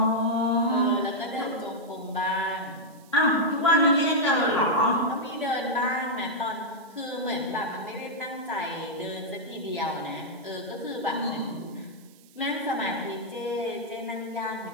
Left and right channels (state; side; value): noise; right; hiss, 27 dB below the sound